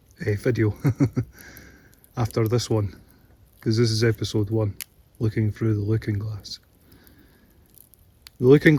video after this one, because this is episode 1, looking through the looking glass. The looking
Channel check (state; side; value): identical; both; correlation 1.00